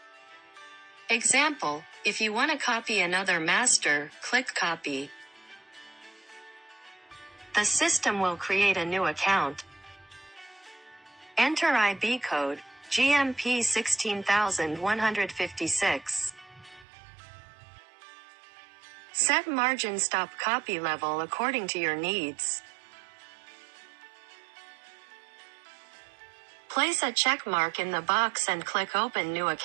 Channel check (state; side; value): drops out; left; at 16.9 s